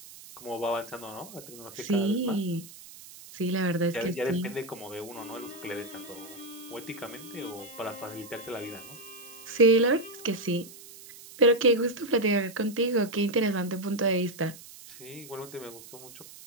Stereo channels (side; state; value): right; noise; hiss, 17 dB below the sound